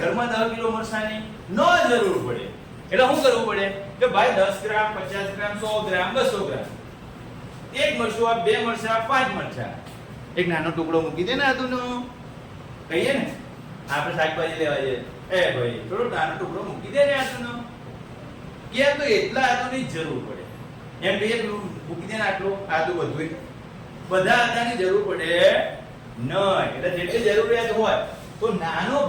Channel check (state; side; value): identical; both; correlation 1.00